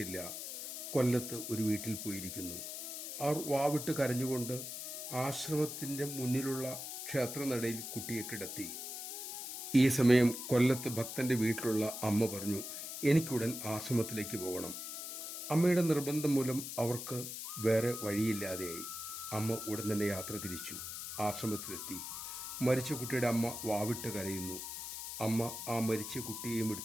കൊല്ലത്ത് ഒരു വീട്ടിൽ പോയിരിക്കുന്നു. അവർ വാവിട്ട് കരഞ്ഞുകൊണ്ട് ആശ്രമത്തിൻ്റെ മുന്നിലുള്ള ക്ഷേത്രനടയിൽ കുട്ടിയെ കിടത്തി. ഈ സമയം കൊല്ലത്ത് ഭക്തന്റെ വീട്ടിലുള്ള അമ്മ പറഞ്ഞു, എനിക്കുടൻ ആശ്രമത്തിലേക്ക് പോകണം. അമ്മയുടെ നിർബന്ധം മൂലം അവർക്ക് വേറെ വഴിയില്ലാതെയായി. അമ്മ ഉടൻ തന്നെ യാത്ര തിരിച്ചു. ആശ്രമത്തിലെത്തി. മരിച്ച കുട്ടിയുടെ അമ്മ വാവിട്ട് കരയുന്നു. അമ്മ ആ മരിച്ച കുട്ടിയെയും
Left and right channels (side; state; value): left; noise; hiss, 7 dB below the sound